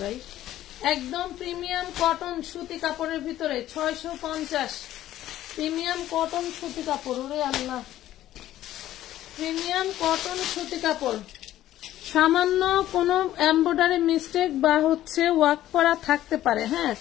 ভাই। একদম প্রিমিয়াম কটন সুতি কাপড়ের ভিতরে 650। প্রিমিয়াম কটন সুতি কাপড়, ওরে আল্লাহ, প্রিমিয়াম কটন সুতি কাপড়। সামান্য কোনো এমব্রয়ডারি মিস্টেক বা হচ্ছে ওয়ার্ক করা থাকতে পারে। হ্যাঁ,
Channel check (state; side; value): quieter; right; 13.5 dB